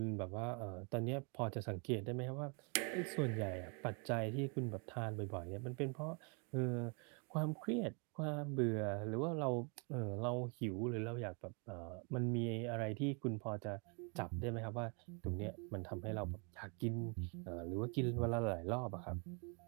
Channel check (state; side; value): quieter; left; 35.0 dB